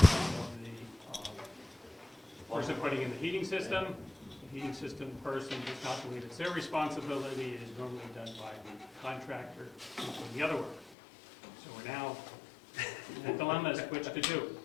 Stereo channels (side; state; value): right; drops out; at 11.0 s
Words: of the person putting in the heating system. The heating system person does not believe it's their responsibility. It is normally done by the contractor who's doing the other work. So we're now in a dilemma as to which to do.